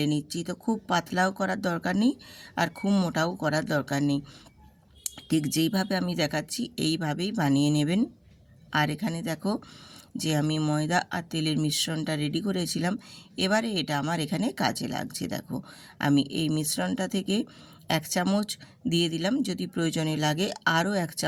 নিচ্ছি। তো খুব পাতলাও করার দরকার নেই আর খুব মোটাও করার দরকার নেই, ঠিক যেইভাবে আমি দেখাচ্ছি এইভাবেই বানিয়ে নেবেন। আর এখানে দেখো যে আমি ময়দা আর তেলের মিশ্রণটা রেডি করেছিলাম, এবারে এটা আমার এখানে কাজে লাগছে। দেখো আমি এই মিশ্রণটা থেকে 1 চামচ দিয়ে দিলাম, যদি প্রয়োজনে লাগে আরও 1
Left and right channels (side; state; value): both; identical; correlation 1.00